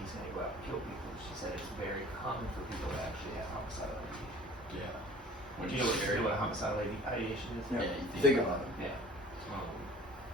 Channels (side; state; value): both; normal; correlation 0.48